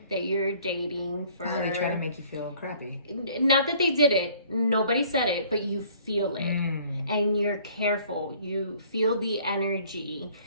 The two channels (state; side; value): inverted; both; correlation -0.56